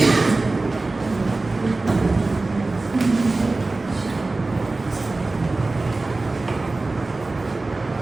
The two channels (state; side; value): quieter; left; 3.3 dB